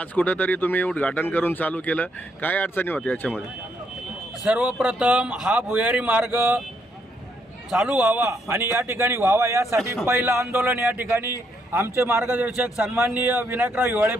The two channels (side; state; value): both; normal; correlation 0.74